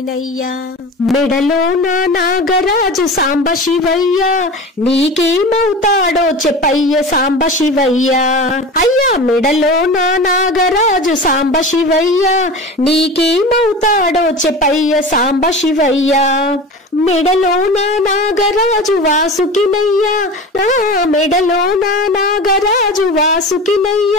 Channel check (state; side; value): normal; both; correlation 0.32